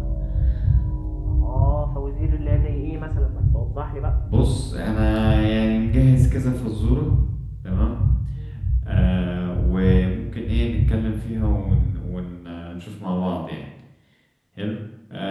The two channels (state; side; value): identical; both; correlation 1.00